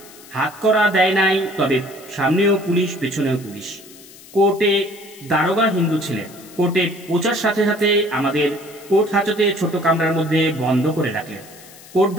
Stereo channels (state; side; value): noise; left; hiss, 21 dB below the sound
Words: হাত করা দেয় নাই, তবে সামনেও পুলিশ, পেছনেও পুলিশ। কোর্টে দারোগা হিন্দু ছিলেন। কোর্টে পৌঁছার সাথে সাথে আমাদের কোর্ট হাজতে ছোট কামরার মধ্যে বন্ধ করে রাখলেন। কোর্ট